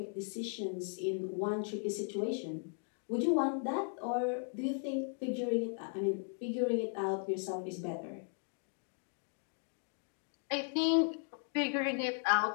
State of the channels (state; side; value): silent; right; 53 dB below the other